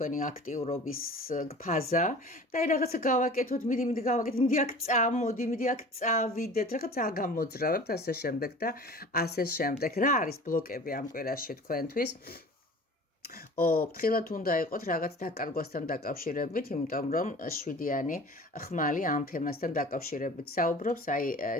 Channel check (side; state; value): both; normal; correlation 0.42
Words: აქტიურობის ფაზა და აი რაღაცა გავაკეთოთ, მიდი გავაკეთოთ, მიდი აქ წამოდი, მიდი აქ წავიდეთ, რაღაც აგამოძრავებთ ასე შემდეგ და ასე შემდეგ. რა არის ბლოკები ამ კვირაში თქვენთვის? ფრთხილად უნდა იყოთ რაღაც დაკარგვასთან დაკავშირებით, იმიტომ რომ 7-იანი ხმალი ამ თემასთან დაკავშირებით საუბრობს, აი